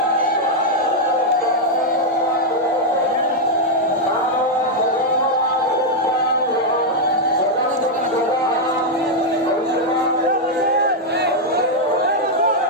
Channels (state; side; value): normal; both; correlation -0.01